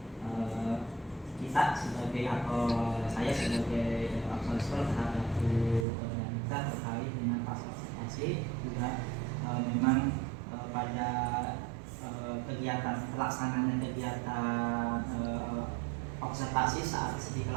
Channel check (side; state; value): left; drops out; at 5.9 s